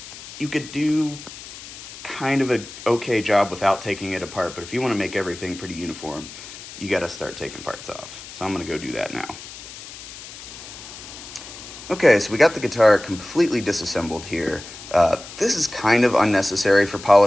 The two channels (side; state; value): left; noise; hiss, 14 dB below the sound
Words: could do kind of an okay job without taking it apart, but if you want to make everything pretty uniform, you got to start taking parts off. So I'm going to go do that now. Okay, so we got the guitar completely disassembled here. This is kind of unnecessary for